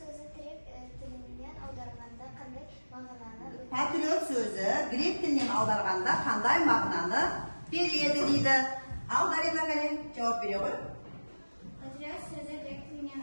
грек тілінен аударғанда қандай мағынаны? Патриот сөзі грек тілінен аударғанда қандай мағынаны береді дейді. Ал, Дарина Кәрен жауап бере ғой. Патриот сөзі грек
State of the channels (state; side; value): inverted; both; correlation -1.00